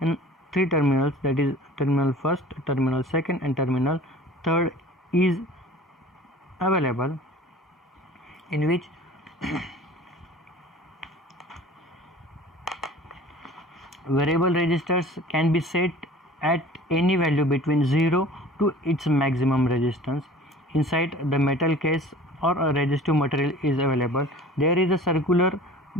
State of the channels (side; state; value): both; normal; correlation 0.44